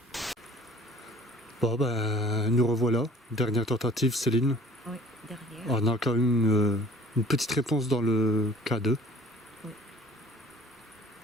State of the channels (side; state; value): both; normal; correlation 0.49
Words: Bon ben, nous revoilà. Dernière tentative, Céline. Oui, derrière. On a quand même une petite réponse dans le cas 2. Oui.